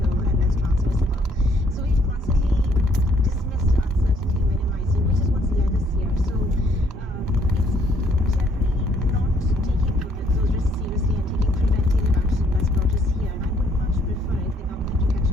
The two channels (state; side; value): normal; both; correlation 0.66